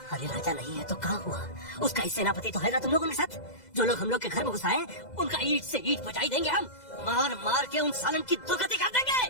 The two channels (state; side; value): late; right; 2.0 ms